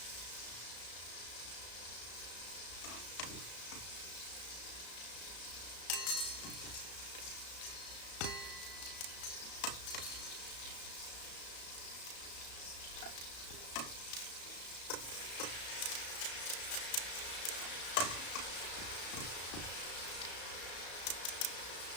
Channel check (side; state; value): right; late; 34 ms